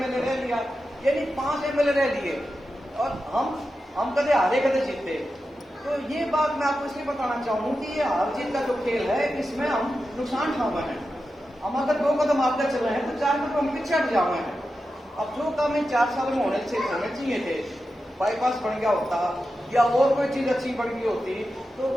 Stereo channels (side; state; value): both; normal; correlation 0.91